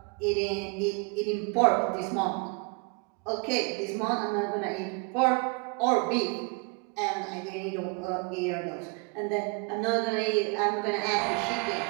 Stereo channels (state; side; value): quieter; left; 31.7 dB